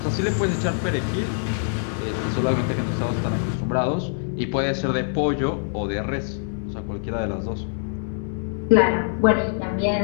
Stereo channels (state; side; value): silent; right; 63 dB below the other